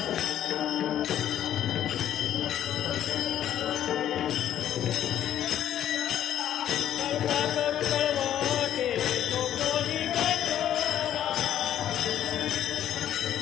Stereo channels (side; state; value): right; quieter; 11.1 dB